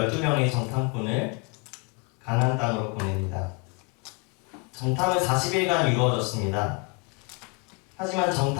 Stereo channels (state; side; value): quieter; right; 30.2 dB